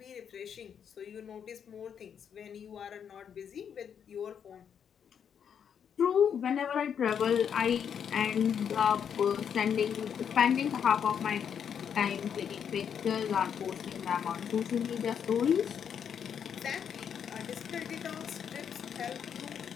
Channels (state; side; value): quieter; right; 7.9 dB